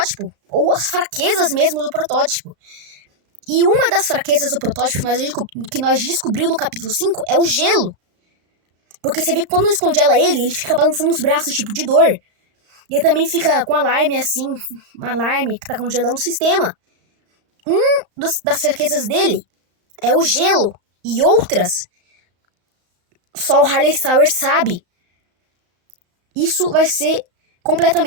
ou as fraquezas mesmo do protótipo. E uma das fraquezas do protótipo que nós descobrimos no capítulo 5 é o gelo. Porque você vê que quando descongela ele fica balançando os braços, tipo, de dor. E ele também fica com alarme assim, um alarme que tá congelando o sistema. Das fraquezas dele é o gelo. E outras, só o Halley Sauer sabe. isso vai ser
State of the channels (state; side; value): late; left; 35 ms